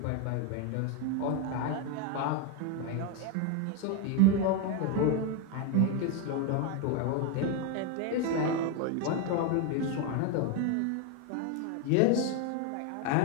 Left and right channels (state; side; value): different; both; correlation 0.01